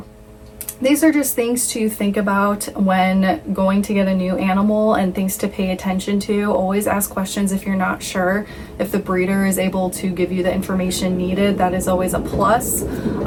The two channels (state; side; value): identical; both; correlation 1.00